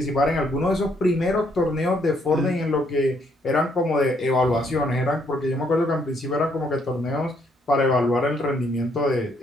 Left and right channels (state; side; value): normal; both; correlation 0.70